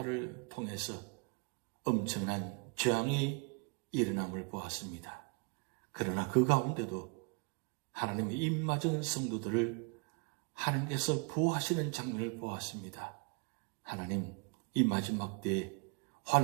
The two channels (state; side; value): quieter; left; 33.3 dB